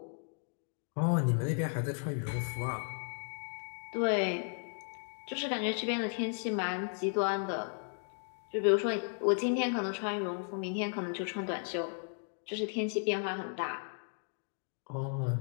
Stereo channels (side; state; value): right; silent; 54 dB below the other